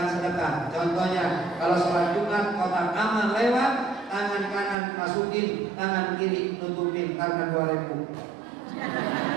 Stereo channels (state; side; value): drops out; left; at 4.8 s